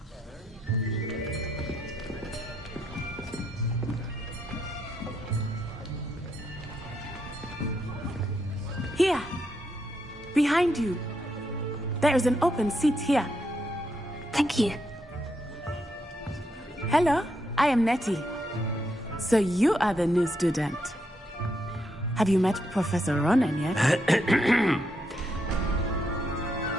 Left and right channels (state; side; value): normal; both; correlation 0.79